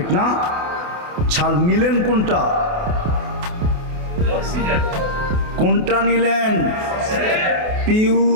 না? ছাড় নিলেন কোনটা? কোনটা নিলেন?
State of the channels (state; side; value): late; left; 28 ms